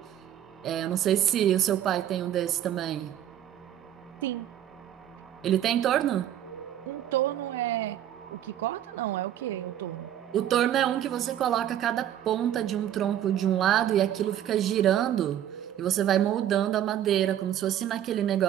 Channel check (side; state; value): left; quieter; 11.1 dB